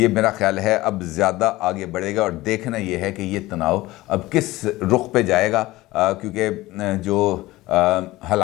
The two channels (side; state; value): right; quieter; 18.4 dB